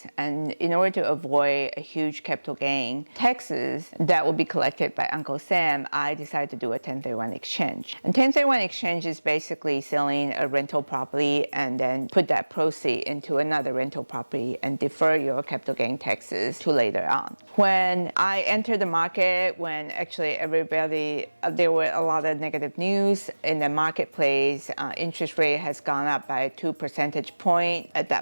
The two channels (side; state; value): both; inverted; correlation -1.00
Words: and in order to avoid a huge capital gain taxes that will be collected by Uncle Sam, I decided to do a 1031 exchange. And 1031 exchange is basically selling a rental property and then put that proceed into another rental property and defer your capital gain taxes to later on. When I entered the market, when actually there were a lot of negative news in the marketplace, interest rate has gone up by 2 percentage points. At